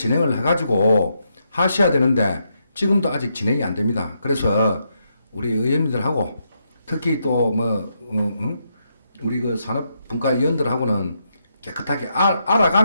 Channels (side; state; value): both; inverted; correlation -0.80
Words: 해가지고 하셔야 되는데 지금도 아직 진행이 안 됩니다. 그래서 우리 의원님들하고 특히 또 우리 그 산업분과위원들하고는 깨끗하게